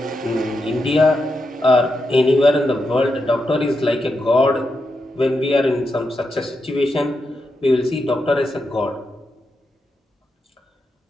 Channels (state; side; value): normal; both; correlation 0.86